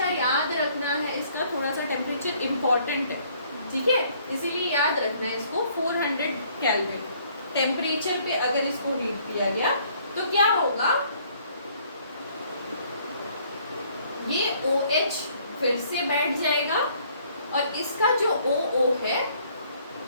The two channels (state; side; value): inverted; both; correlation -0.62